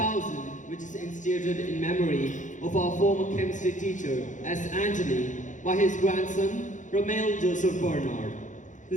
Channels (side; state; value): right; late; 0.36 ms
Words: which is instituted in memory of our former chemistry teacher, S. Anthony, by his grandson, Romeo Joseph Bernard.